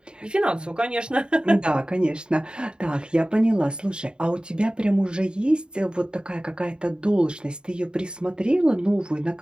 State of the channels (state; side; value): late; left; 0.050 ms